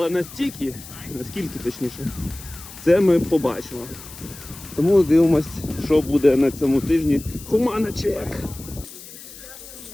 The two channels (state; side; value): noise; left; hiss, 16 dB below the sound